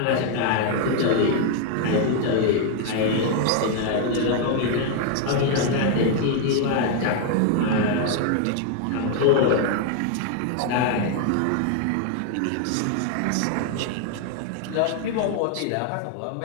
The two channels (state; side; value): different; both; correlation 0.00